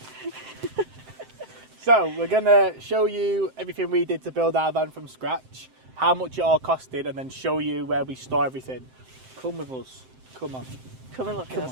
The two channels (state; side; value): late; left; 7.7 ms